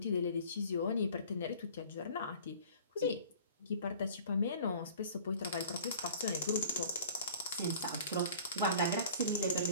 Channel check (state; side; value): inverted; both; correlation -0.46